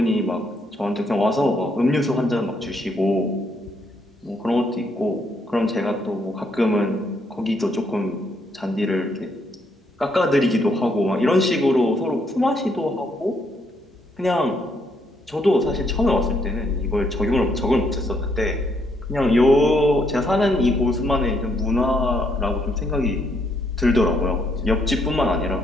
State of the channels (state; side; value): normal; both; correlation 0.73